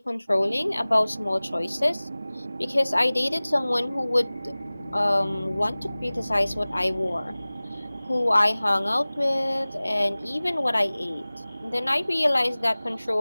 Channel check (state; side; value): inverted; both; correlation -0.99